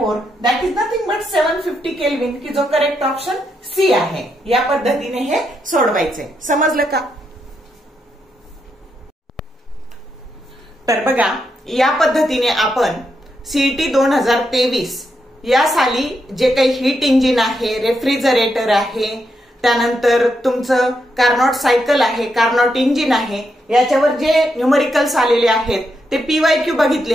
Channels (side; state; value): both; normal; correlation 0.81